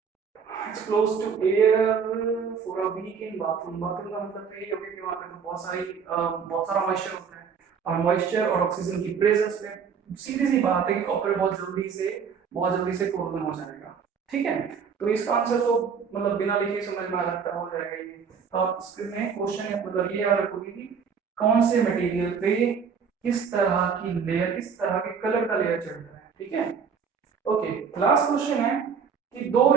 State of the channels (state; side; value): quieter; left; 6.4 dB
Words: Expose to air for a week in bathroom, bathroom का मतलब तो ये हो गया कि वहां पे बहुत सारा मॉइस्चर होता है, और मॉइस्चर और ऑक्सीजन की प्रेजेंस में सीधी सी बात है कि कॉपर बहुत जल्दी से कोरोजन हो जाएगा, ठीक है। तो इसका आंसर तो मतलब बिना लिखे समझ में आ सकता हो जाएगा ये। तो आप इसमें क्वेश्चन या मतलब ये याद रखोगे कि कौन से मटेरियल पे किस तरह की लेयर, किस तरह के कलर का लेयर चढ़ रहा है, ठीक है। ओके, लास्ट क्वेश्चन है कि दो